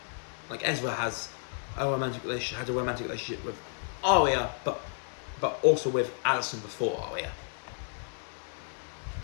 Like Ezra has a romantic relationship with Aria, but also with Alison before Aria.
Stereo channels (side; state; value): right; silent; digital silence